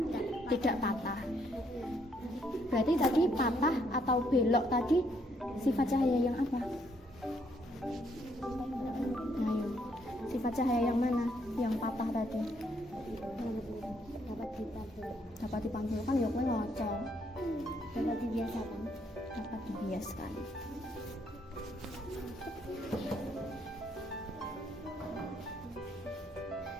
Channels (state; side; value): normal; both; correlation 0.71